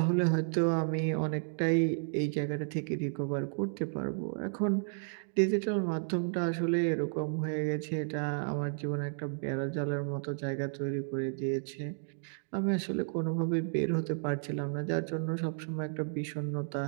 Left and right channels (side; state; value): left; silent; digital silence